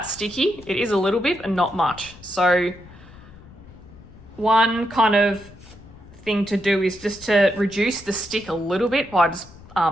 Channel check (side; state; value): left; noise; rumble, 21 dB below the sound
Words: sticky. It is a little bit and not much. So one kind of thing to do is just to reduce the stick a little bit by just